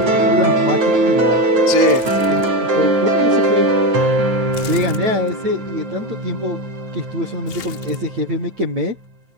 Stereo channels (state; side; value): late; left; 8.9 ms